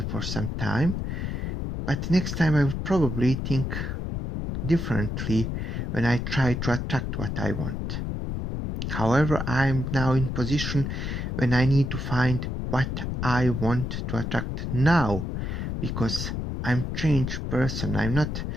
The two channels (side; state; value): left; noise; rumble, 3 dB below the sound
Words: for some time. But next time I will probably think differently when I try to attract what I want. However, I'm now in position when I need to find what I want to attract now because I'm changed person. I'm not